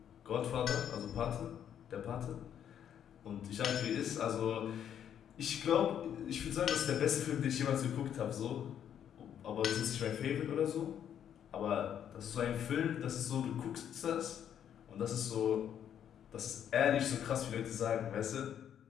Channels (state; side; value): quieter; right; 9.4 dB